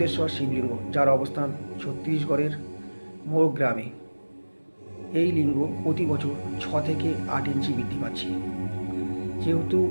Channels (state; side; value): inverted; both; correlation -1.00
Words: শিবলিঙ্গ, যার অবস্থান ছত্তিশগড়ের মোর গ্রামে। এই লিঙ্গ প্রতি বছর 6 থেকে 8 ইঞ্চি বৃদ্ধি পাচ্ছে। যেহেতু